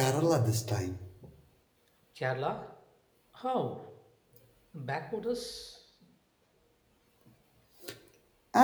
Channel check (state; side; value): identical; both; correlation 1.00